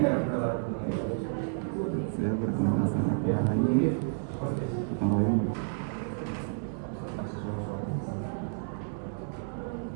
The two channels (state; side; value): silent; left; 57 dB below the other